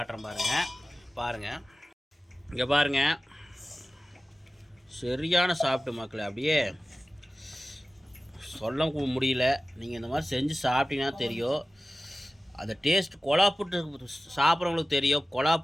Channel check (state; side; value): normal; both; correlation 0.96